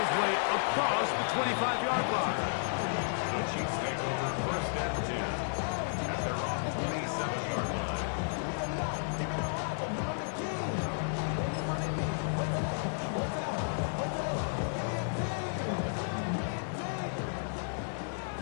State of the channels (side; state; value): right; silent; 56 dB below the other